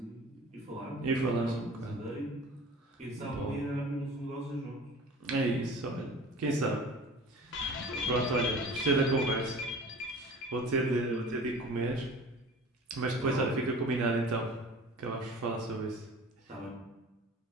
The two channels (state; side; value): normal; both; correlation 0.41